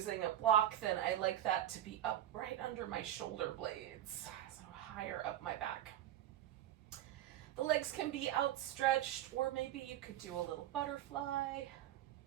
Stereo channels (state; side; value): quieter; left; 12.2 dB